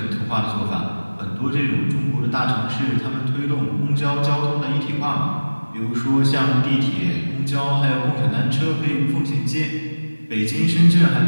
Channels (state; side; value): inverted; both; correlation -1.00